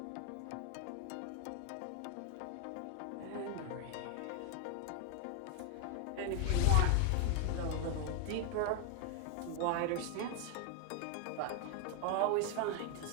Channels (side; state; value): both; different; correlation 0.01